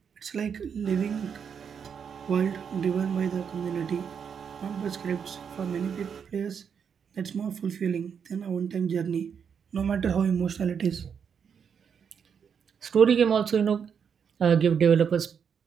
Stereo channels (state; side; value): quieter; left; 7.1 dB